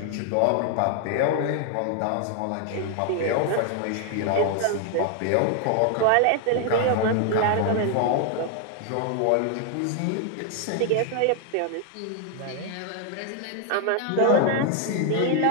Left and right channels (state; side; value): different; both; correlation 0.00